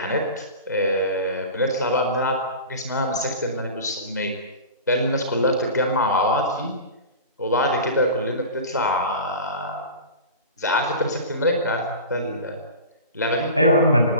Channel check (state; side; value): inverted; both; correlation -0.33